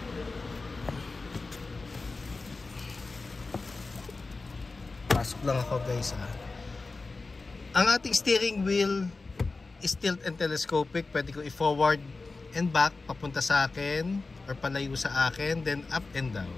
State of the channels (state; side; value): quieter; right; 3.7 dB